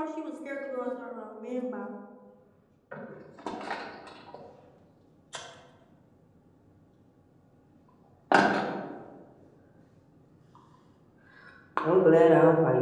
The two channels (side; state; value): both; identical; correlation 1.00